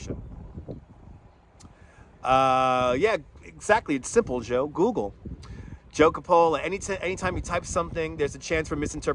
Yeah, exactly. It's simple, Joe. Google. Joe Capola, anytime you type something, there's a chance for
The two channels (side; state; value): both; identical; correlation 1.00